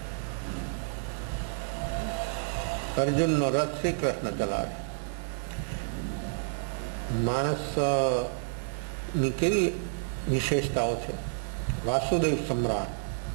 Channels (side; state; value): left; silent; 58 dB below the other